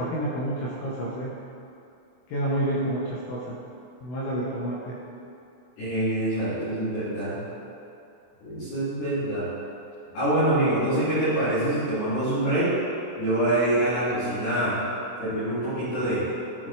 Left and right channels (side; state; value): right; late; 24 ms